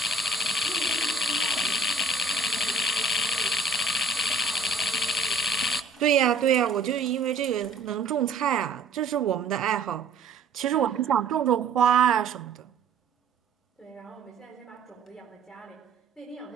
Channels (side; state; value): left; quieter; 3.8 dB